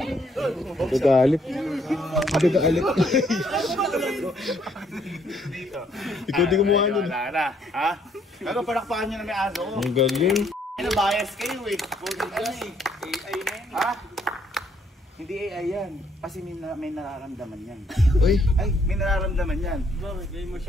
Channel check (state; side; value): normal; both; correlation 0.68